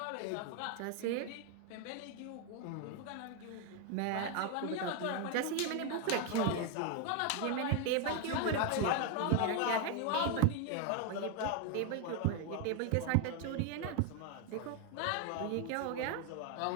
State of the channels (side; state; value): both; different; correlation 0.01